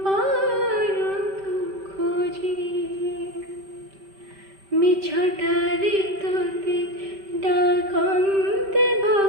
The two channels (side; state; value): left; late; 5.1 ms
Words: পারন্তু খোঁজি মিছটারে তোতে ডাকন্তে